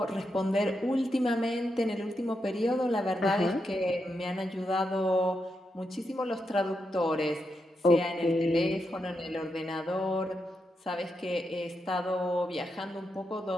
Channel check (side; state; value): both; normal; correlation 0.84